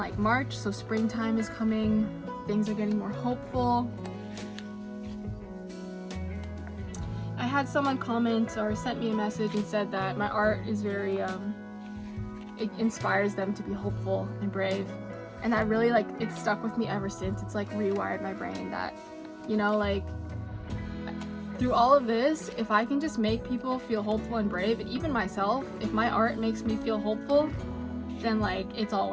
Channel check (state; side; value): identical; both; correlation 1.00